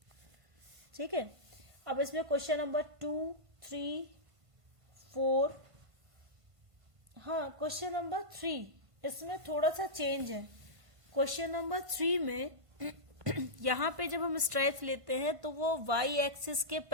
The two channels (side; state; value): left; late; 1.5 ms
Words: ठीक है, अब इसमें क्वेश्चन नंबर 2, 3, 4, हाँ क्वेश्चन नंबर 3 इसमें थोड़ा सा चेंज है। क्वेश्चन नंबर 3 में यहाँ पे जब हम स्ट्राइप्स लेते हैं तो वो y एक्सिस के